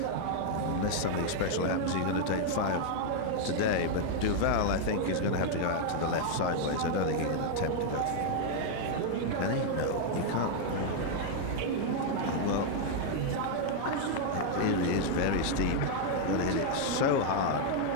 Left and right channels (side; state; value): both; different; correlation 0.00